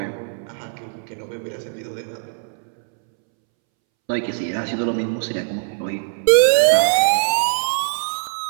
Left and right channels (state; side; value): silent; left; 65 dB below the other